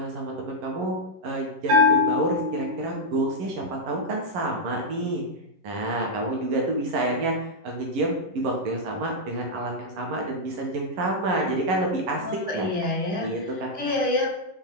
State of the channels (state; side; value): late; left; 11 ms